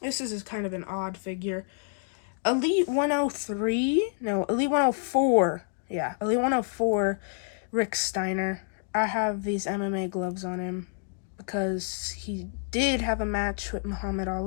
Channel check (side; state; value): right; silent; digital silence